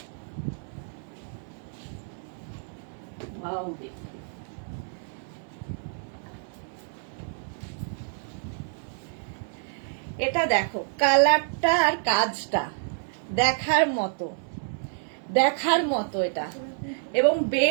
এটা দেখো, কালারটা আর কাজটা দেখার মতো এটা, এবং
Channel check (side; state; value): left; silent; 59 dB below the other